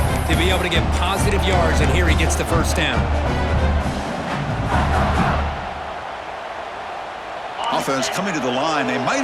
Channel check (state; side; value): identical; both; correlation 1.00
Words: to be able to get positive yards, and here he gets the 1st down. Offense coming to the line. They